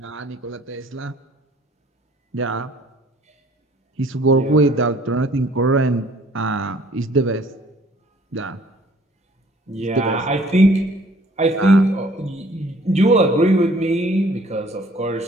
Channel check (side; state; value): both; normal; correlation 0.56